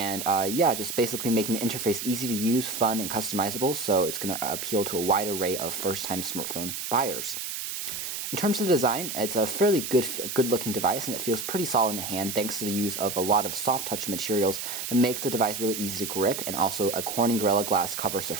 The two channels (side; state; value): right; noise; hiss, 5 dB below the sound